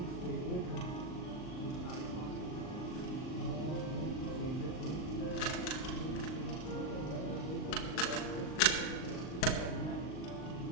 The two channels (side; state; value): right; late; 39 ms